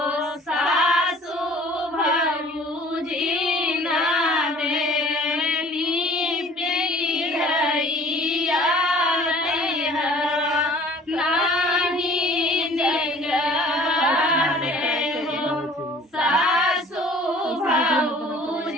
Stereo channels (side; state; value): both; normal; correlation 0.50